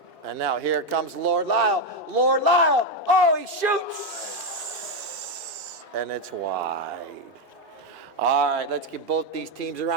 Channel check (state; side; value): normal; both; correlation 0.06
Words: And now here comes Lord Lyle. Oh, he shoots! And it's wide. All right, let's give both these teams a